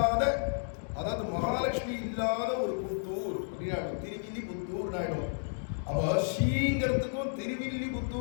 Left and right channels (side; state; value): right; silent; digital silence